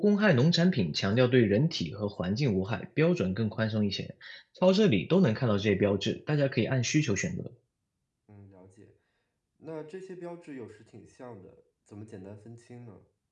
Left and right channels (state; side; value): identical; both; correlation 1.00